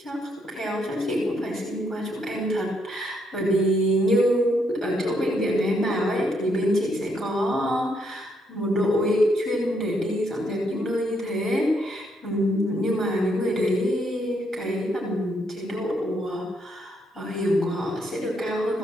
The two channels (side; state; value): both; normal; correlation 0.75